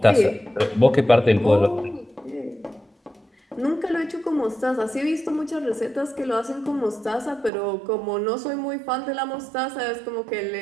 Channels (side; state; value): left; drops out; at 7.5 s